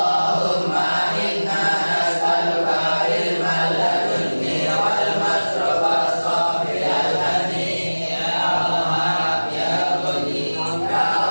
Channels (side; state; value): both; inverted; correlation -1.00